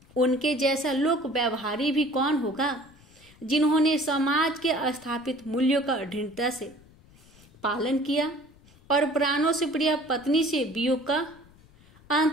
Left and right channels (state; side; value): noise; left; rumble, 26 dB below the sound